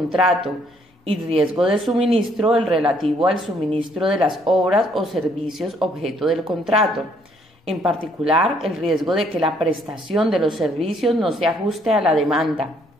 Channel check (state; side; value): normal; both; correlation 0.66